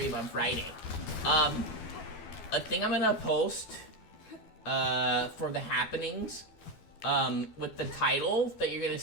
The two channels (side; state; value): right; late; 12 ms